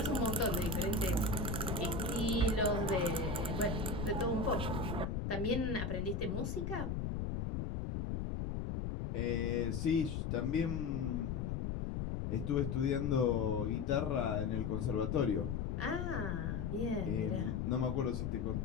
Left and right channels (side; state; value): left; noise; rumble, 1 dB below the sound